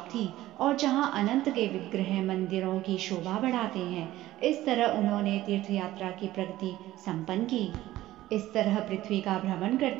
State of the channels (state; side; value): quieter; left; 15.4 dB